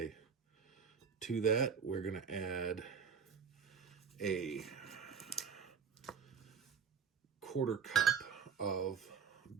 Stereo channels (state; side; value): quieter; left; 6.7 dB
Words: To that, we're going to add a 1/4 cup of